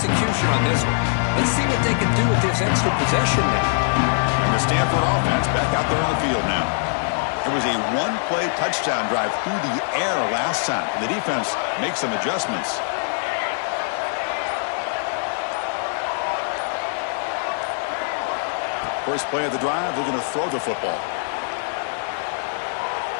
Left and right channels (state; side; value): silent; right; digital silence